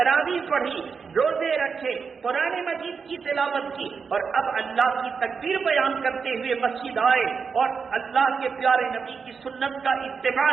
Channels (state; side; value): quieter; left; 5.6 dB